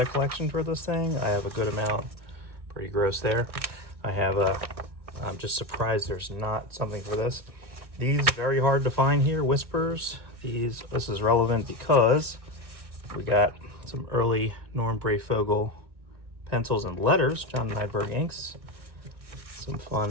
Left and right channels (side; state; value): left; late; 1.4 ms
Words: a collection for this thing. I have a good amount. Pretty gross there. I'm just surprised there's not something for this. These very hard to find here. Whispers. This is relevant because we got some early Norm Breyfogle pencils and letters. John Nydberg inks. Some